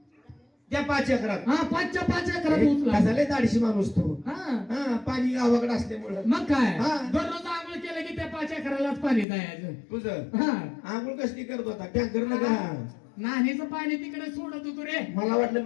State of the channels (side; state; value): right; drops out; at 9.2 s